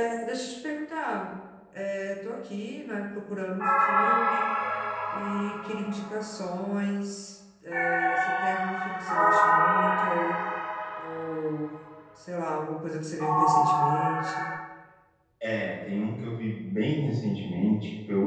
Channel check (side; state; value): both; identical; correlation 1.00